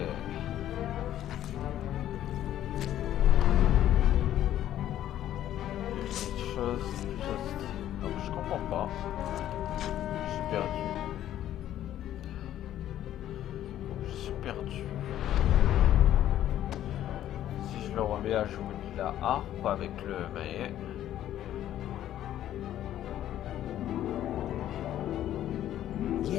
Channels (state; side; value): quieter; right; 12.1 dB